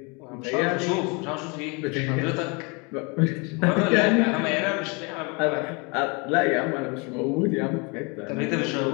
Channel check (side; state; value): right; quieter; 30.5 dB